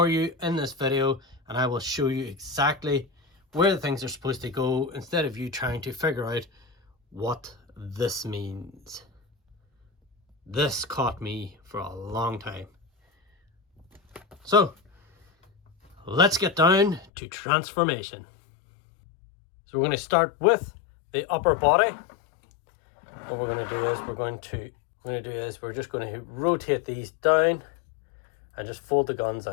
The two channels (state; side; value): drops out; right; at 17.1 s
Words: you in this video, and I will show you exactly where the things are supposed to go instead of you trying to figure out what this means. This caught me for a long time. So let's get down to transformation. So we're going to start with the upper body. What we're going to do is we're just going to rotate these down and just fold the guns